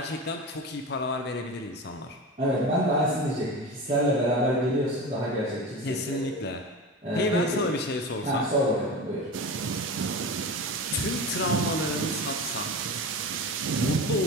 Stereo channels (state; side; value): normal; both; correlation 0.28